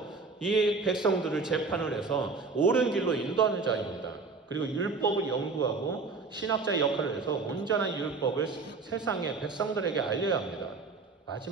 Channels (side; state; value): left; quieter; 4.2 dB